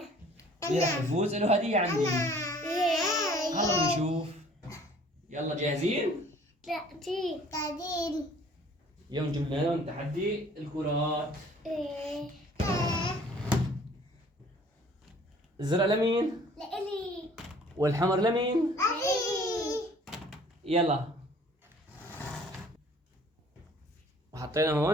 مين راح يفوز؟ له هدية عندي. هلا نشوف. يلا جاهزين؟ قاعدين. اليوم جبنا لهم تحدي الكرات. الزرق لمين؟ لإلي. والحمر لمين؟ يلا. وحطينا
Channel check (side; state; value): both; normal; correlation 0.53